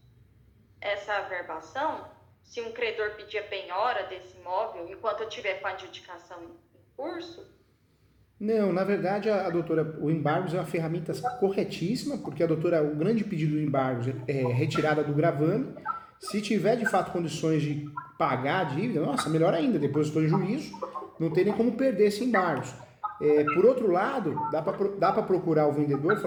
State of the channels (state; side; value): identical; both; correlation 1.00